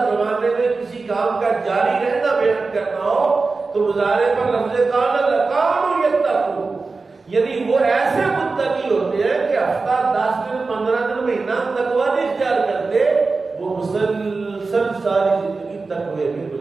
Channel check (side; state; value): left; quieter; 4.0 dB